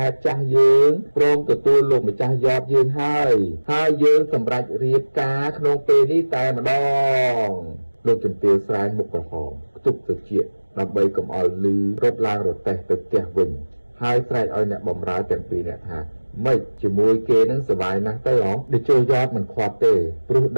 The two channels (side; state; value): both; inverted; correlation -1.00